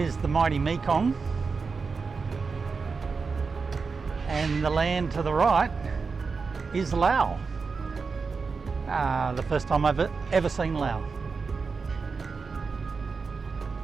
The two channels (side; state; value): left; quieter; 4.8 dB